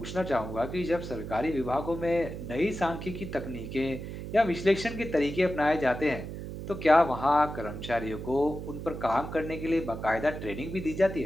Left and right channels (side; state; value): right; noise; hum, 8 dB below the sound